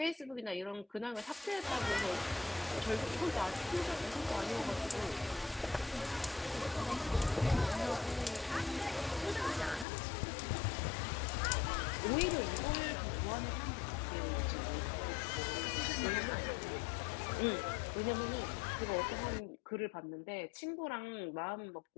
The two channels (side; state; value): right; drops out; at 9.9 s